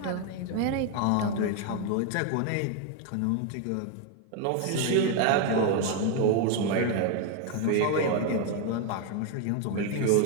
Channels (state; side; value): different; both; correlation 0.01